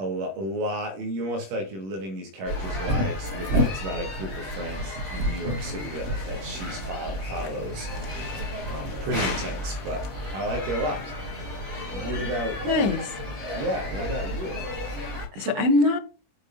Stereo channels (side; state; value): left; late; 21 ms